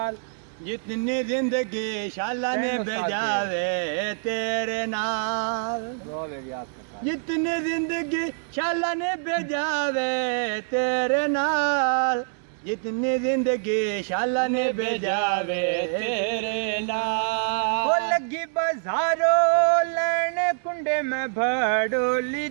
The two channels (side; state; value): left; silent; digital silence